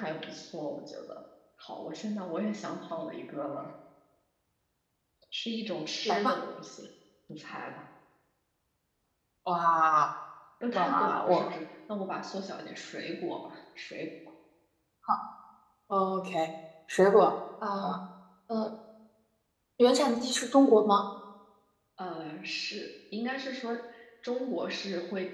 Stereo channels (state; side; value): identical; both; correlation 1.00